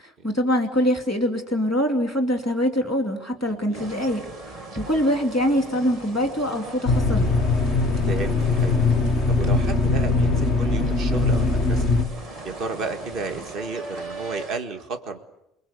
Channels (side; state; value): both; normal; correlation 0.50